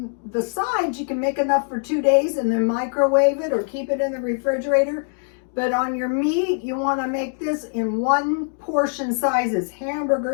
the sides, you can make enough for 2 days and then microwave it or keep it in the refrigerator. But on your meat, you want to make this in 1 portion sizes,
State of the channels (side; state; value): right; silent; 64 dB below the other